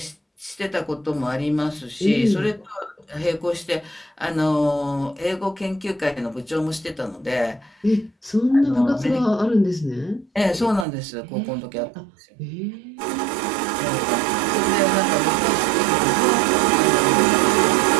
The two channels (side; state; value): left; drops out; at 10.9 s